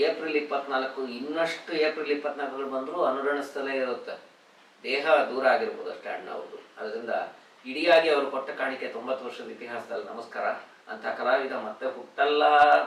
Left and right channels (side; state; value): both; identical; correlation 1.00